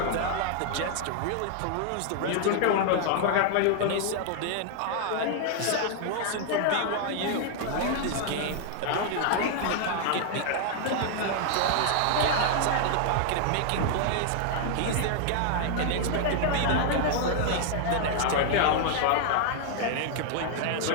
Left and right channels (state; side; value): different; both; correlation 0.00